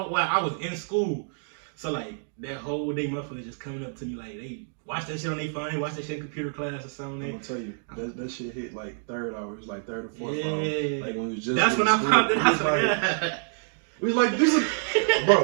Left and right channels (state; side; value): silent; left; digital silence